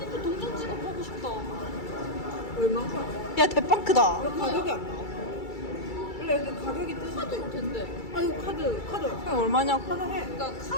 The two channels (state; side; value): late; right; 2.3 ms